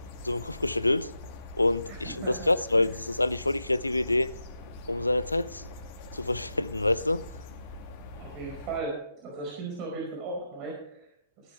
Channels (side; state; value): both; inverted; correlation -0.88